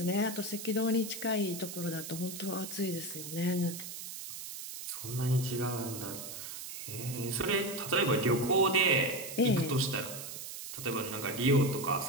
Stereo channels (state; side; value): noise; right; hiss, 9 dB below the sound